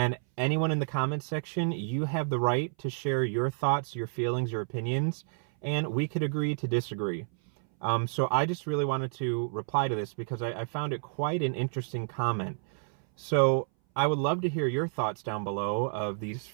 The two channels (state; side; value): silent; left; 58 dB below the other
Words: anyone in the comments section, you have the right to share your thoughts, your feelings, your opinions, and we could agree to disagree. So I just really wanted to reply to this because I found it quite an interesting comment. So I would love to hear your thoughts down below of these